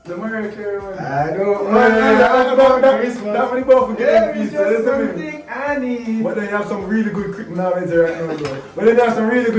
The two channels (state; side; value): identical; both; correlation 1.00